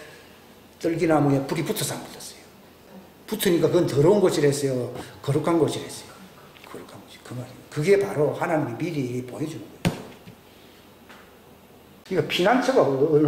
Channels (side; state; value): both; identical; correlation 1.00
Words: 떨기나무에 불이 붙어서 안 붙었어요. 붙으니까 그건 더러운 것이랬어요. 거룩한 것이랬어요. 거룩한 것이 그 말이에요. 그게 바로 하나님이 미리 보여주는 거예요. 그러니까 피난처가